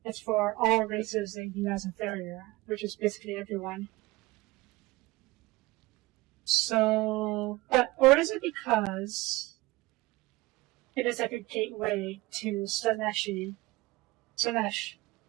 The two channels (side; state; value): left; quieter; 20.7 dB